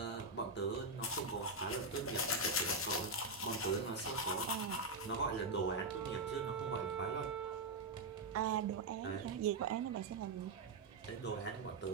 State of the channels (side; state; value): left; quieter; 3.3 dB